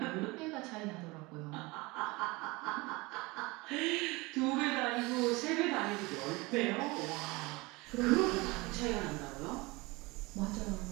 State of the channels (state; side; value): quieter; left; 23.8 dB